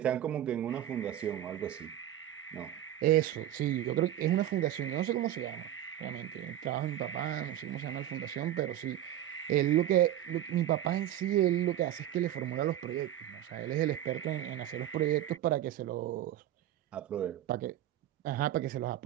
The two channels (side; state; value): left; quieter; 12.2 dB